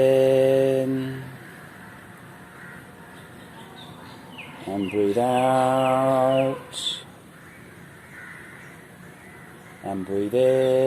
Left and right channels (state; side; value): identical; both; correlation 1.00